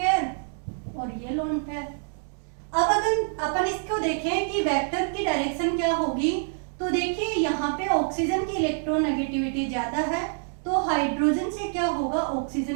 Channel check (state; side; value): silent; left; digital silence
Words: और ये लोन पेयर। अब अगर अपन इसको देखें कि वेक्टर की डायरेक्शन क्या होगी, तो देखिए यहाँ पे ऑक्सीजन की इलेक्ट्रोनेगेटिविटी ज्यादा है, तो हाइड्रोजन से क्या होगा,